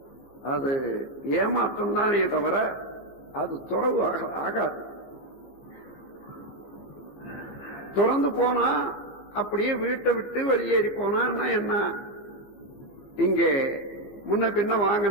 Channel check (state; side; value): late; right; 14 ms